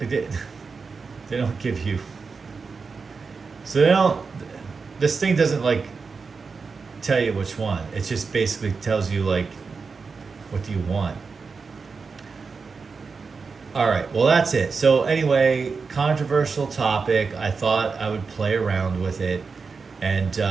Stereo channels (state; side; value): quieter; left; 4.9 dB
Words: don't give you. So they don't. This thing doesn't like tell you which one. It just basically tells you like, what do you want? All right, well that's it. So anyway, controversial topic. I thought I would play around with it, and